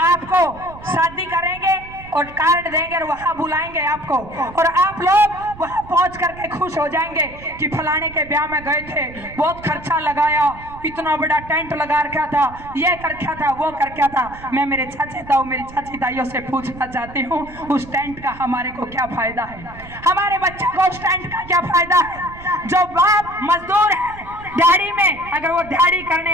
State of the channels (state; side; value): noise; right; rumble, 17 dB below the sound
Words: शादी करेंगे और कार्ड देंगे और वहां बुलाएंगे आपको, और आप लोग वहां पहुंच करके खुश हो जाएंगे कि फलाने के ब्याह में गए थे, बहुत खर्चा लगाया, इतना बड़ा टेंट लगा रखा था, ये कर रखा था, वो कर रखा था। मैं मेरे चाचे ताऊ मेरी चाची ताइयों से पूछना चाहती हूँ, उस टेंट का हमारे को क्या फायदा है? हमारे बच्चों को उस टेंट का क्या फायदा है? जो बाप मजदूर है दिहाड़ी में, अगर वो दिहाड़ी करने